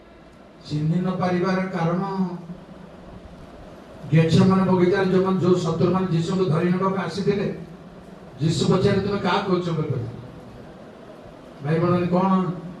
ଚିହ୍ନି ନ ପାରିବାର କାରଣ ଗେଚେମାନେ ବଗିଚାରେ ଯୋଉ ଶତ୍ରୁମାନେ ଯୀଶୁଙ୍କୁ ଧରି ନେବାକୁ ଆସିଥିଲେ, ଯୀଶୁ ପଚାରେ ତୁମେ କାହା କହୁଛ ବୋଲି କହିଲେ। ଭାଇ ଭଉଣୀ କଣ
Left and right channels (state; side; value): identical; both; correlation 1.00